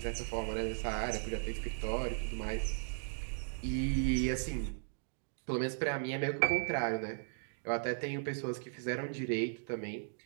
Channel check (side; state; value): left; silent; digital silence